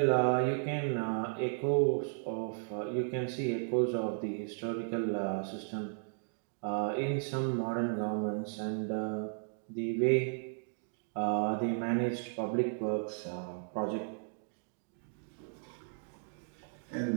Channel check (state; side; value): silent; left; digital silence